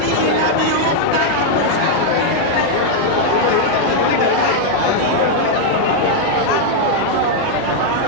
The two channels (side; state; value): both; different; correlation 0.00